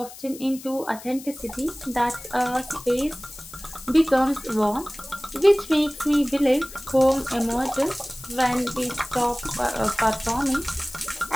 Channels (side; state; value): left; noise; hiss, 16 dB below the sound